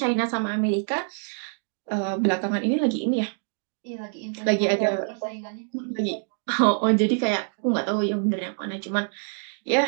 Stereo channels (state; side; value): silent; left; digital silence